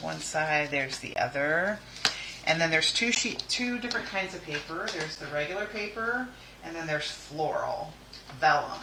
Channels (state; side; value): identical; both; correlation 1.00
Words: one side, there's the other. And then there's two different kinds of paper. There's the regular paper, and then there's floral, vellum,